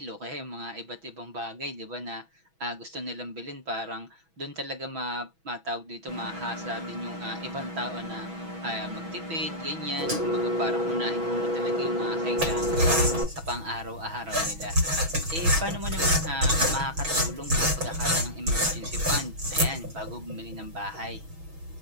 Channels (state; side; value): late; left; 6.1 ms